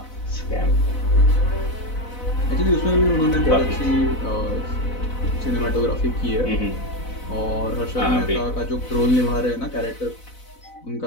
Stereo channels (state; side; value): late; right; 4.0 ms